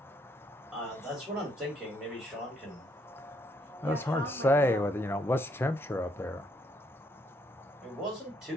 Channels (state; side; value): normal; both; correlation 0.71